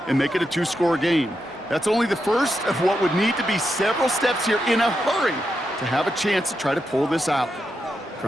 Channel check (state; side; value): normal; both; correlation 0.86